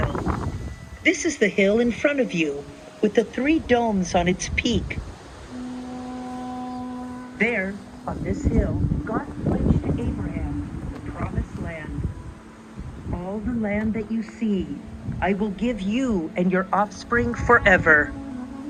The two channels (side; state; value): both; identical; correlation 1.00